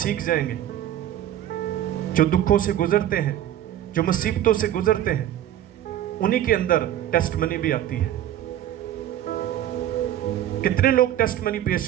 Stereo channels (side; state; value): left; quieter; 11.7 dB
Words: जाएंगे। जो दुखों से गुजरते हैं, जो मुसीबतों से गुजरते हैं, उन्हीं के अंदर टेस्टमनी भी आती है। कितने लोग टेस्टमनी पेश